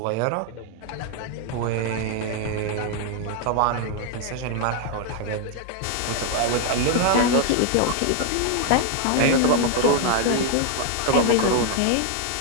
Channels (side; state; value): both; different; correlation 0.00